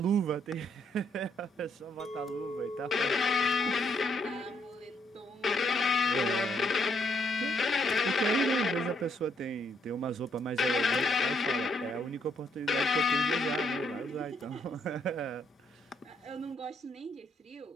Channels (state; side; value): normal; both; correlation 0.72